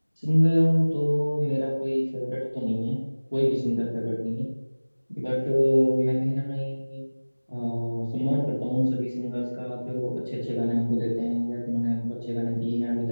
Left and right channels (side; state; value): both; inverted; correlation -1.00